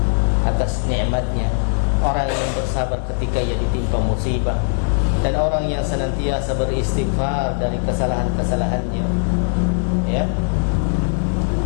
atas nikmatnya, orang yang bersabar ketika ia ditimpa musibah, dan orang yang senantiasa beristighfar dari kesalahan-kesalahannya, ya,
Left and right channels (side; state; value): right; silent; digital silence